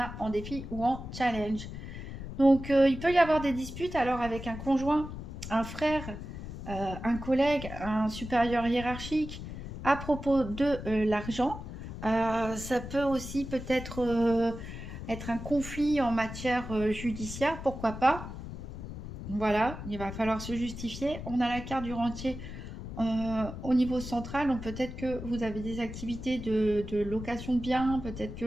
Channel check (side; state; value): left; noise; rumble, 9 dB below the sound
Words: en défi ou en challenge. Donc il peut y avoir des disputes alors avec un conjoint, un frère, un collègue, un supérieur hiérarchique à propos de l'argent. Ça peut aussi peut-être être un conflit en matière judiciaire, pourquoi pas. Voilà, il va falloir se justifier. On a la carte du rentier au niveau central, donc peut-être que vous avez des activités de location de biens, peut-être